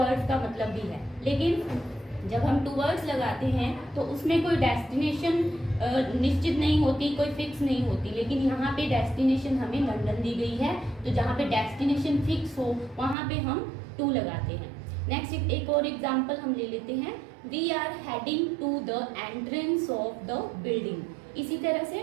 का मतलब भी है। लेकिन जब हम टूवर्ड्स लगाते हैं तो उसमें कोई डेस्टिनेशन निश्चित नहीं होती, कोई फिक्स नहीं होती। लेकिन यहाँ पे डेस्टिनेशन हमें लंदन दी गई है, तो जहाँ पे डेस्टिनेशन फिक्स हो वहाँ पे हम टू लगाते हैं। नेक्स्ट एक और एग्जांपल हम ले लेते हैं, we are heading to the entrance of the building. इसी तरह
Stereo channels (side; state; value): left; drops out; at 13.2 s